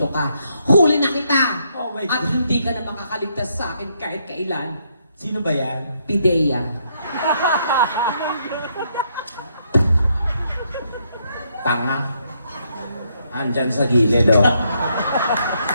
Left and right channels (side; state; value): both; inverted; correlation -0.75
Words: God. ka. Huli na kita! Oh my At God. hindi ka na makakaligtas sa akin kahit kailan. Sino ba yan? Pidea. Tanga. Andyan sa gilid, oh.